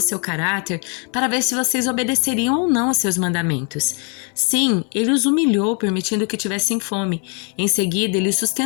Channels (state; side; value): quieter; right; 36.6 dB